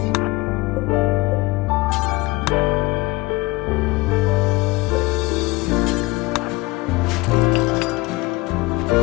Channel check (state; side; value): quieter; right; 21.8 dB